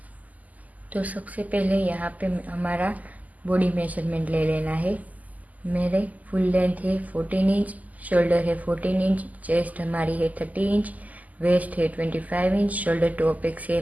तो सबसे पहले यहाँ पे हमारा बॉडी मेजरमेंट ले लेना है। मेरे फुल लेंथ है 14 इंच, शोल्डर है 14 इंच, चेस्ट हमारी है 30 इंच, वेस्ट है 25 इंच, शोल्डर टू अपेक्स है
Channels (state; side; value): late; left; 0.078 ms